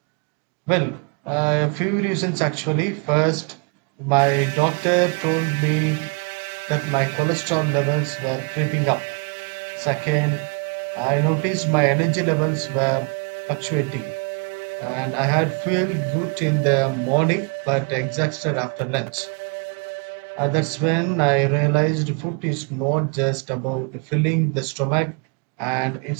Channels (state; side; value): quieter; left; 35.9 dB